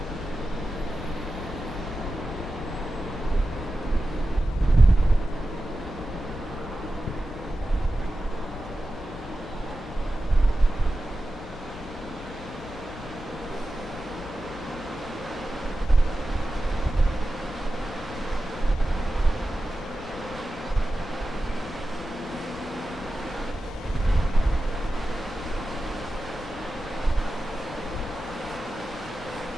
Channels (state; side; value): normal; both; correlation 0.93